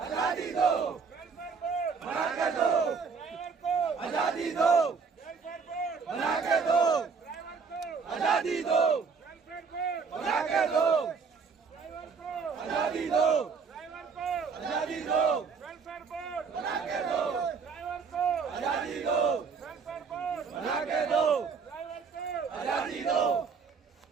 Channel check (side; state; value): left; quieter; 5.4 dB